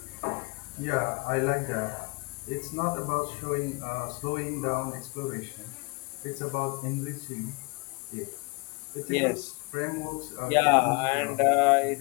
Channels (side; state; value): right; quieter; 28.3 dB